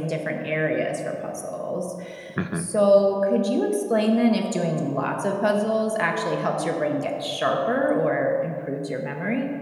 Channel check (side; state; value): both; identical; correlation 1.00